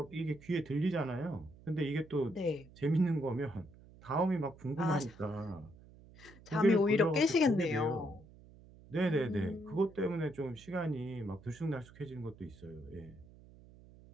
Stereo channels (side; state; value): right; noise; hum, 22 dB below the sound